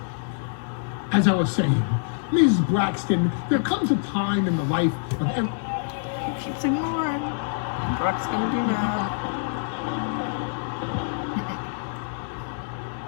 As I was saying, Ms. Braxton, there comes a time in the life of every... He keeps ignoring. Brock's gonna be mad.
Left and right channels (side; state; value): right; silent; 61 dB below the other